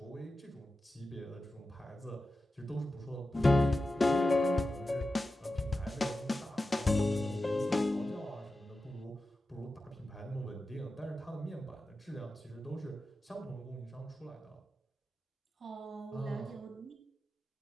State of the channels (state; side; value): normal; both; correlation 0.92